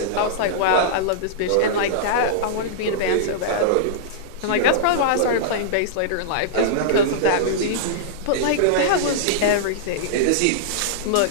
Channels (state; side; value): different; both; correlation -0.02